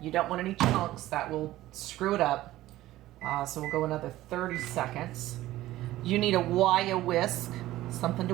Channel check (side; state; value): left; quieter; 15.7 dB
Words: don't want any chunks. That will screw it up. So we'll go another 30 seconds. You need a wire whisk, something